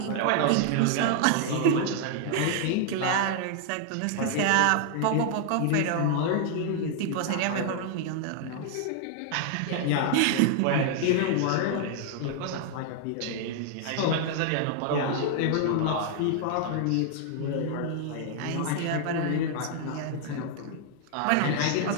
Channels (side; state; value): both; different; correlation 0.00